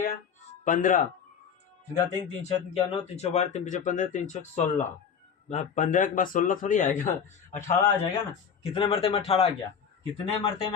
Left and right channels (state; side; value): quieter; right; 7.1 dB